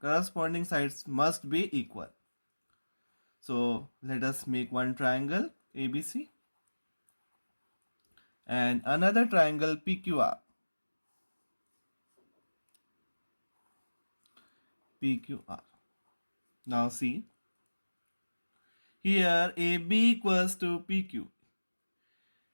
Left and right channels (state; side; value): inverted; both; correlation -1.00